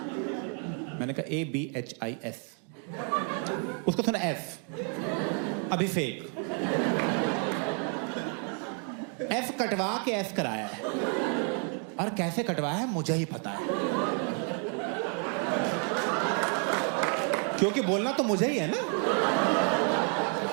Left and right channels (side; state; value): left; quieter; 39.9 dB